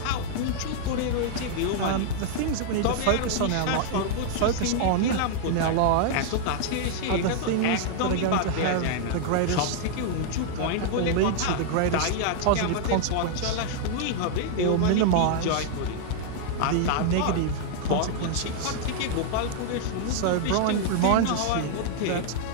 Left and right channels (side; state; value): both; different; correlation -0.01